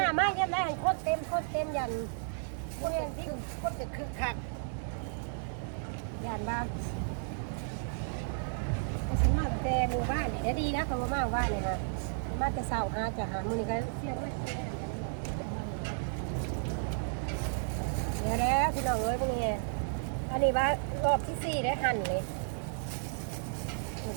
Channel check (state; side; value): silent; left; 56 dB below the other